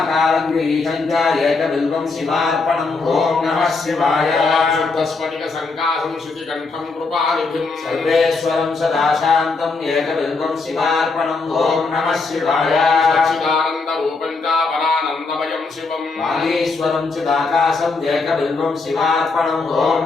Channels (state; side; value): quieter; right; 4.0 dB